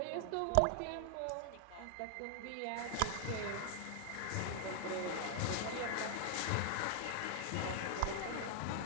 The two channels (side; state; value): both; different; correlation 0.00